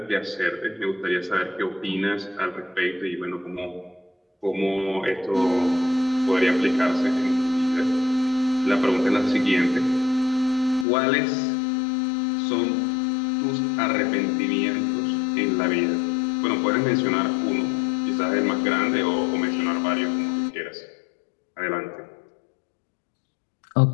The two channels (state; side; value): drops out; right; at 10.9 s